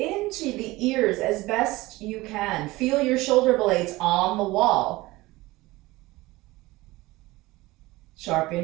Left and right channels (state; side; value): quieter; left; 20.0 dB